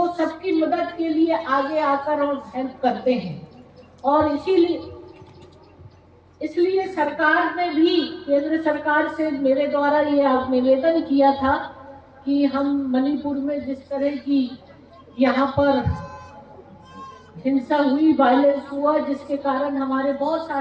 सबकी मदद के लिए आगे आकर और हेल्प करते हैं। और इसलिए सरकार ने भी, केंद्र सरकार से मेरे द्वारा ये निवेदन किया था कि हम मणिपुर में जिस तरह की यहाँ पर हिंसा हुई, वायलेंस हुआ, जिसके कारण हमारे बहुत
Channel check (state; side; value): identical; both; correlation 1.00